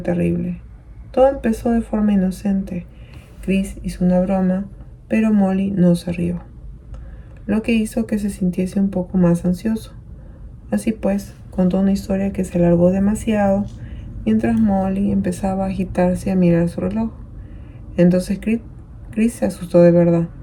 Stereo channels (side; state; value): both; identical; correlation 1.00